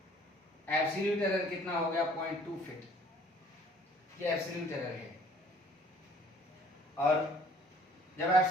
एब्सोल्यूट एरर कितना हो गया 0.2 फीट, ये एब्सोल्यूट एरर है। और जब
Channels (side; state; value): both; normal; correlation 0.56